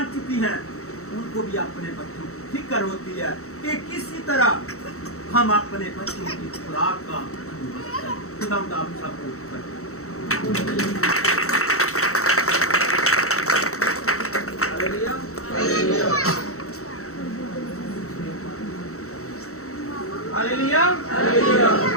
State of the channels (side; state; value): right; late; 0.64 ms